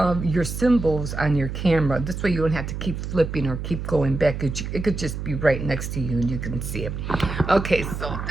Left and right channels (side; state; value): right; noise; hum, 5 dB below the sound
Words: your symbols on your camera. This way you don't have to keep flipping or keep going back. It could just be right next to you and you can see it. Okay, so